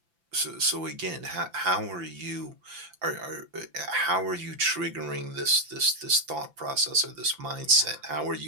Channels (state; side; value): late; left; 5.9 ms